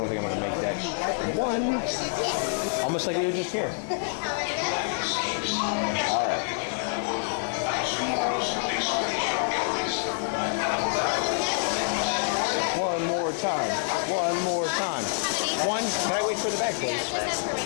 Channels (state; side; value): silent; right; digital silence